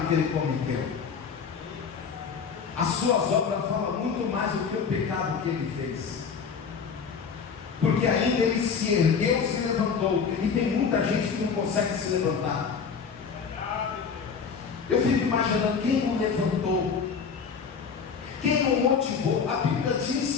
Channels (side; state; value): right; quieter; 6.0 dB